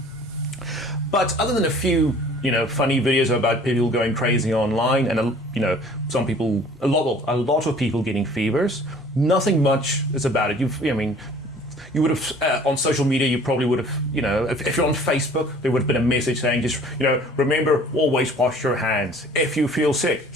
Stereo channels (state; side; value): normal; both; correlation 0.51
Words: But other than a few funny videos about people going crazy online, and some people, a lot of people getting fevers, nothing much is about it. You would have on social media. You probably would have, if you're on Facebook, there would have been a message saying, just remember, always wash your hands. If you feel sick,